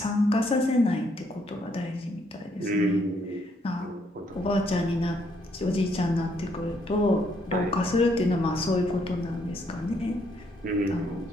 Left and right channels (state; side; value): normal; both; correlation 0.71